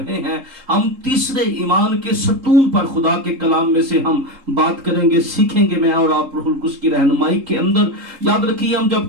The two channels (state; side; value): late; left; 3.8 ms